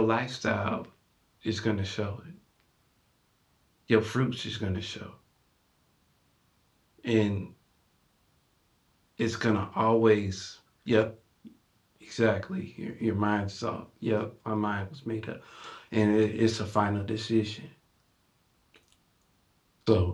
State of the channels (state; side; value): identical; both; correlation 1.00